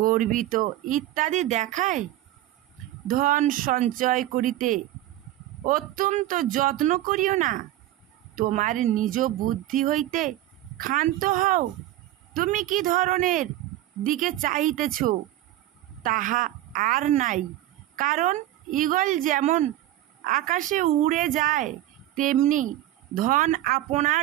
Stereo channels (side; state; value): left; quieter; 14.6 dB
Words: গর্বিত ইত্যাদি দেখায়? ধন সঞ্চয় করিতে অত্যন্ত যত্ন করিও না, তোমার নিজ বুদ্ধি হইতে ক্ষান্ত হও। তুমি কি ধরনের দিকে চাহিতেছ তাহা আর নাই, কারণ ঈগল যেমন আকাশে উড়ে যায় তেমনি ধন